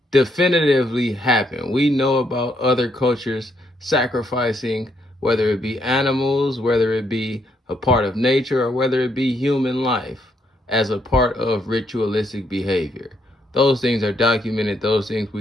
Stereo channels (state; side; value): normal; both; correlation 0.74